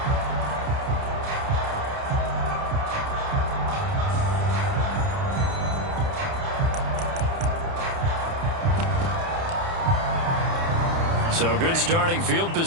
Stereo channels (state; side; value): late; left; 30 ms